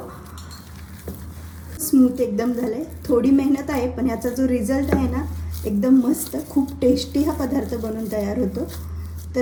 स्मूथ एकदम झालंय। थोडी मेहनत आहे पण याचा जो रिझल्ट आहे ना एकदम मस्त, खूप टेस्टी हा पदार्थ बनून तयार होतो।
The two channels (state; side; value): identical; both; correlation 1.00